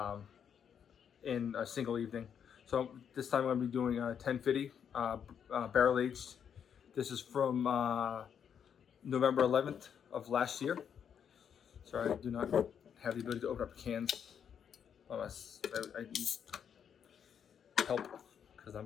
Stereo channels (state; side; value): quieter; right; 8.0 dB